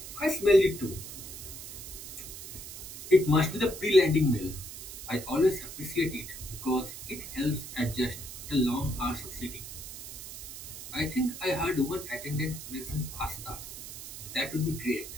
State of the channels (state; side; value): noise; right; hiss, 11 dB below the sound